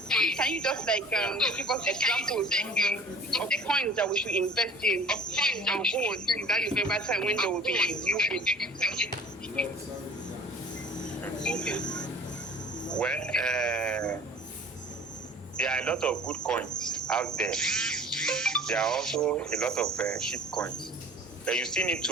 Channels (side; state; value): both; normal; correlation 0.47